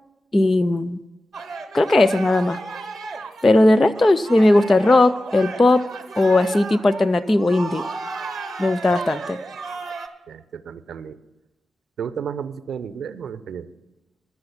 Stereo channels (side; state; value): both; normal; correlation 0.94